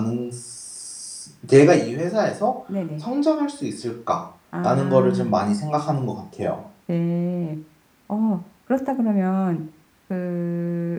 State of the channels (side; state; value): both; identical; correlation 1.00